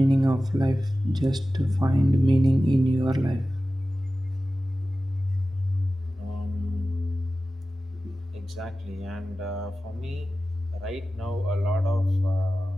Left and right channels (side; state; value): both; normal; correlation 0.95